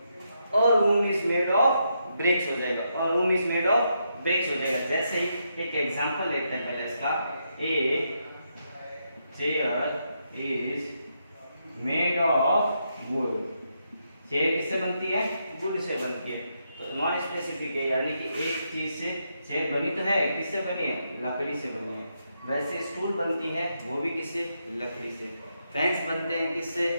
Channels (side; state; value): both; inverted; correlation -0.80